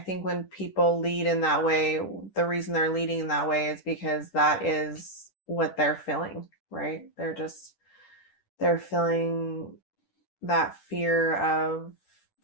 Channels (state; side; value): late; right; 10 ms